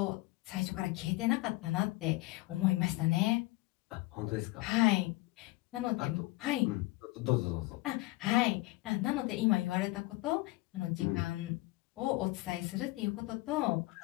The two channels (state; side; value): quieter; right; 21.0 dB